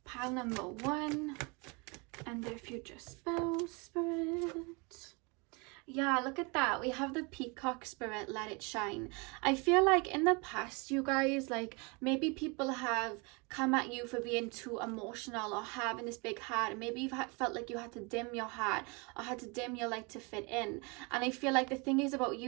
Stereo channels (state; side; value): quieter; left; 30.1 dB